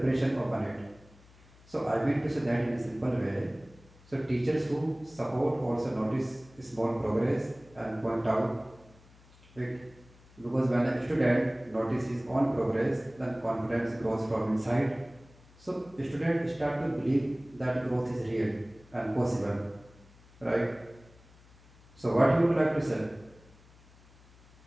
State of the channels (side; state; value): left; noise; hum, 26 dB below the sound